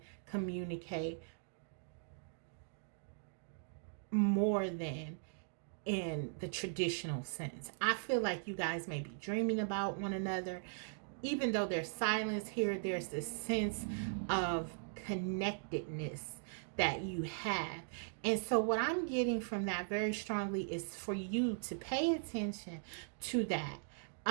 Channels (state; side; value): silent; left; digital silence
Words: communicate more than in the traditional sense. I feel like you guys may be dreaming about one another. Even though there's silence here, there's this sense of connectedness that you have. And so what I'm getting from that very strongly is for you to pay attention to that,